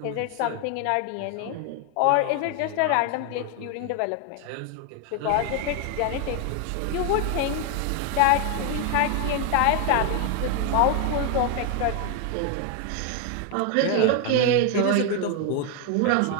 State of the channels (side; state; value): both; different; correlation 0.01